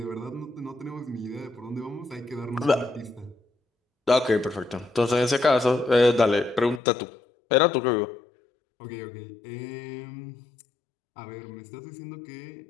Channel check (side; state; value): right; drops out; at 6.8 s